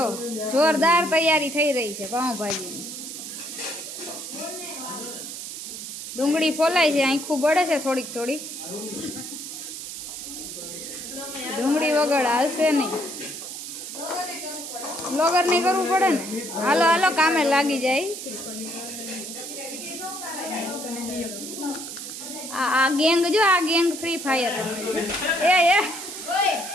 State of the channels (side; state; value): right; noise; hiss, 8 dB below the sound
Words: જોરદાર તૈયારી થઈ રહી છે પાઉંભાજીની। ડુંગળી ફોલાય છે, આખું બળે છે થોડીક થોડીક। ડુંગળી વગર હાલશે નહીં, બ્લોગર નહીં કરવું પડે ને। હાલો હાલો કામે લાગી જાય। આ ગેંગ જો, આ ગેંગ ફ્રી ફાયર એ